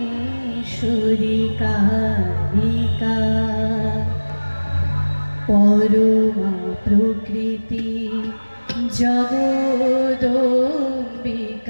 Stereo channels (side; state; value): both; inverted; correlation -1.00